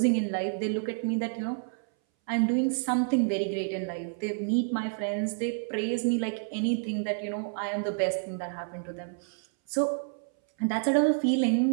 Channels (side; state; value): left; silent; 59 dB below the other